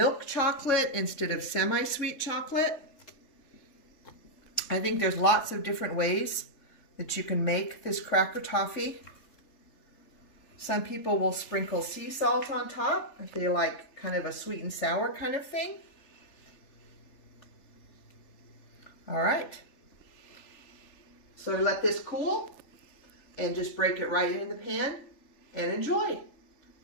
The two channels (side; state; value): right; late; 3.4 ms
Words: chocolate instead of semi-sweet chocolate. I think there's lots of different ways that you can make this cracker toffee. Some people will sprinkle sea salt on top if they like kind of a sweet and sour kind of thing. All right. So let this cool and just break it right in the pan and enjoy.